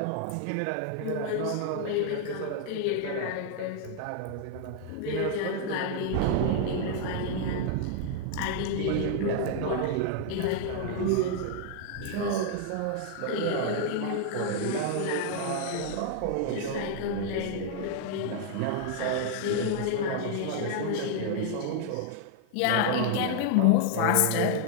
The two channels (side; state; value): both; different; correlation 0.00